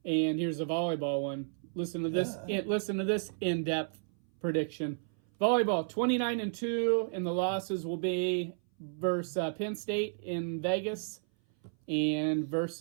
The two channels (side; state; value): left; silent; 56 dB below the other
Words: And here's a volleyball one. Listen to this. Listen to this in-depth prediction. Volleyball 29-2, and the losses will be versus Penn State in Vegas and